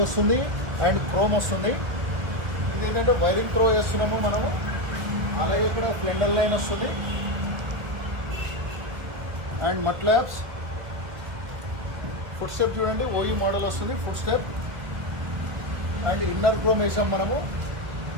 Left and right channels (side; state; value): left; late; 1.5 ms